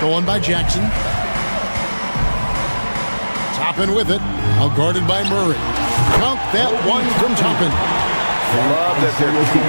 by Jackson. Toppin with it. Now guarded by Murray. Count that one from Toppin. Love that they're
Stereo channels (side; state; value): both; inverted; correlation -1.00